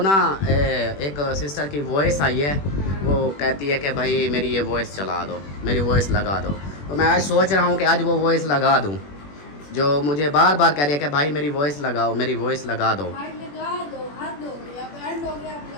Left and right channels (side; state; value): right; late; 21 ms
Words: ना एक सिस्टर की वॉइस आई है, वो कहती है कि भाई मेरी ये वॉइस चला दो, मेरी वॉइस लगा दो। तो मैं आज सोच रहा हूँ कि आज वो वॉइस लगा दूँ, जो मुझे बार बार कह रही है कि भाई मेरी वॉइस लगाओ, मेरी वॉइस लगा दो।